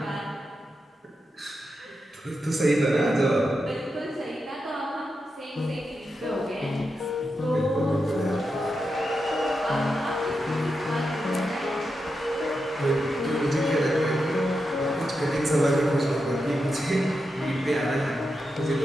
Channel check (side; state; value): both; normal; correlation 0.87